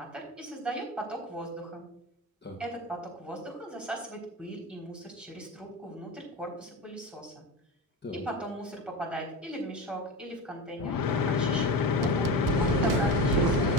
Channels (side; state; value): both; normal; correlation 0.25